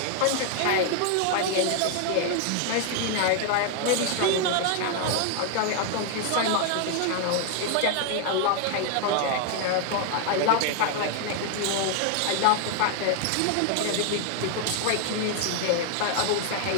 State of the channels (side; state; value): both; different; correlation 0.00